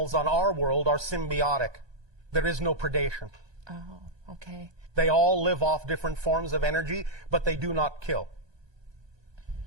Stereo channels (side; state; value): left; late; 1.2 ms